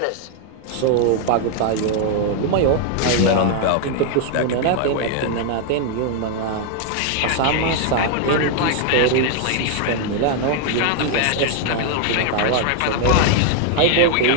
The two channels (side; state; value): both; different; correlation 0.00